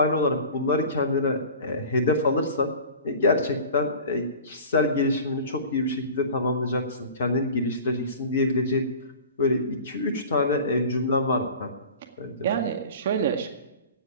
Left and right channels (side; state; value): both; inverted; correlation -0.39